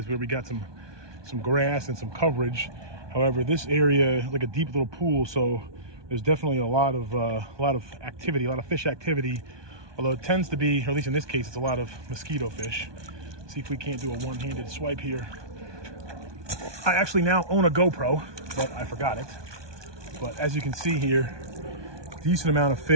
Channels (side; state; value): left; late; 1.2 ms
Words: where we got some grass and some coverage. However, this area is like a deep little pool, so there's definitely a lot of activity, a lot of fish activity. Although it tends to be, or at least in this case, it's a lot of mosquito fish. See if we can't do a one-handed swipe here. I actually now own a GoPro, but I forgot it. But as you can see here, decent amount of